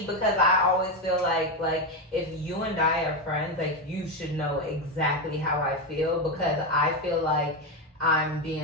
because I always feel like if you and I are friends, like, you should know exactly how I feel, because I feel like I'm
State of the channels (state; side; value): normal; both; correlation 0.10